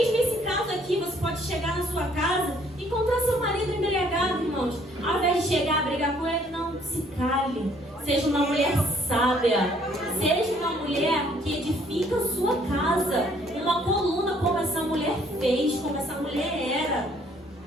esse caso aqui, você pode chegar na sua casa e encontrar seu marido embriagado, irmãos. Ao invés de chegar a brigar com ele, não, se cale. Seja uma mulher sábia. Seja uma mulher que edifica a sua casa. Uma coluna como essa mulher fez, como essa mulher era.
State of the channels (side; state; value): both; normal; correlation 0.63